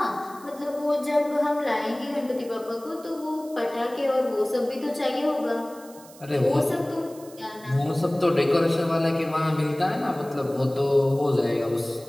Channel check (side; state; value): right; noise; hiss, 22 dB below the sound